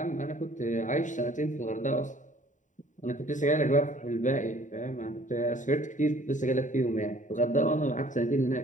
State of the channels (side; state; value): right; late; 0.36 ms